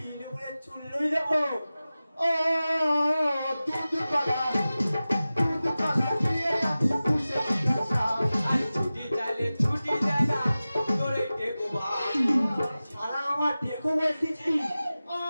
বলে চুল্লই দেবো ও দুধ পালা দিয়ে আমি পুষে দিলাম আর ছুটি চালে ছুটি দেয় না তোরে টেকো ভাই সারা আমার দেখো বলতেছি ও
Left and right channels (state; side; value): inverted; both; correlation -0.96